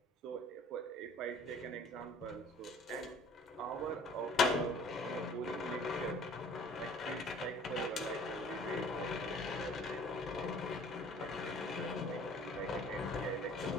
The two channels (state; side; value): normal; both; correlation 0.52